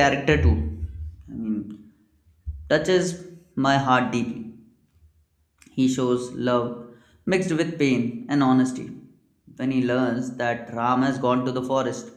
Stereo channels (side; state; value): both; identical; correlation 1.00